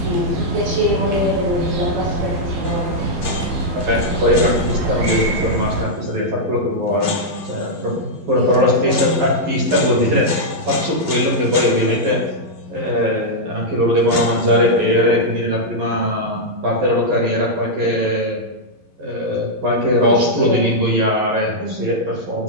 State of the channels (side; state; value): left; late; 11 ms